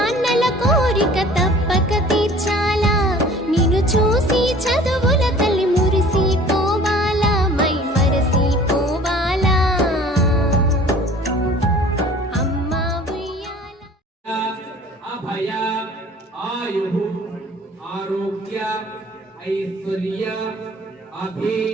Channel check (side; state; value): both; normal; correlation 0.48